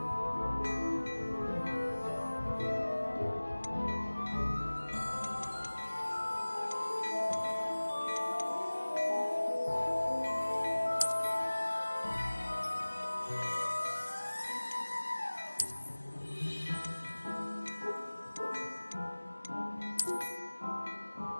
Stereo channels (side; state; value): both; inverted; correlation -1.00